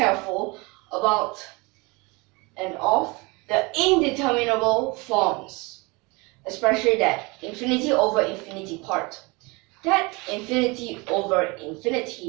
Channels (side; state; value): left; quieter; 26.6 dB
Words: about and of the indeterminable forms, especially that infinity over infinity part. That infinity over